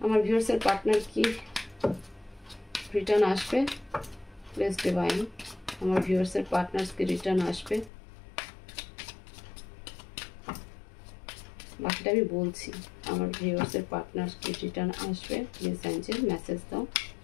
আমার ভিউয়ার্সের পার্টনার কি রিটার্ন আসবে? প্লিজ ডিভাইন, আমার ভিউয়ার্সের পার্টনার্স কি রিটার্ন আসবে? বাকিটা আমি বলছি। আমার ভিউয়ার্সের পার্টনার্স কি রিটার্ন আসবে? প্লিজ অ্যাঞ্জেল মেসেজ দাও।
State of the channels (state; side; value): drops out; right; at 7.9 s